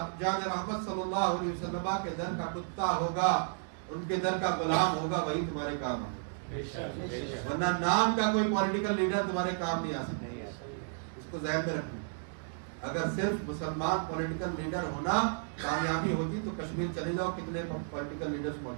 جان رحمت صلی اللہ علیہ وسلم کے در کا کتا ہوگا، ان کے در کا غلام ہوگا، وہی تمہارے کام ہوگا، ورنہ نام کا کوئی پولیٹیکل لیڈر تمہارے کام نہیں آ سکتا۔ اس کو ذہن میں رکھنا، اگر صرف مسلمان پولیٹیکل لیڈر ہونا کامیابی ہوتی تو کشمیر چلے جاؤ، کتنے پولیٹیکل لیڈرز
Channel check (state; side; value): silent; left; digital silence